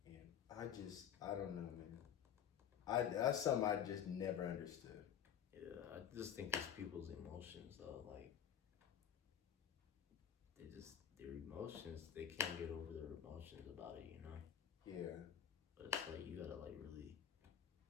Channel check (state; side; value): quieter; right; 9.1 dB